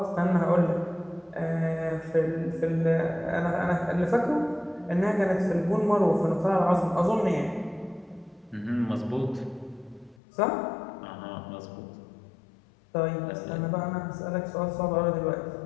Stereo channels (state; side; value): drops out; right; at 10.2 s